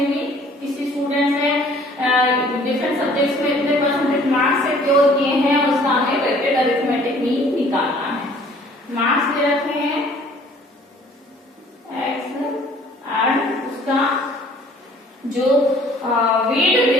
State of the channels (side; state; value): both; normal; correlation 0.55